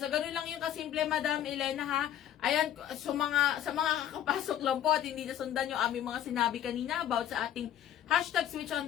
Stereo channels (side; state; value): right; quieter; 10.9 dB